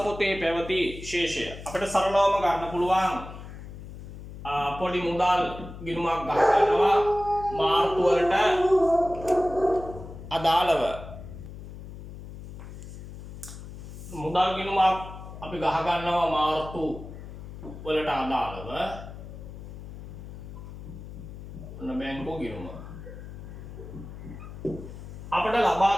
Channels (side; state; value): left; noise; hum, 12 dB below the sound